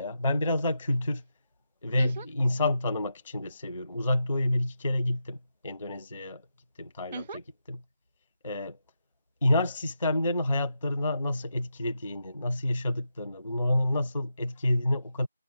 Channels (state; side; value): inverted; both; correlation -0.86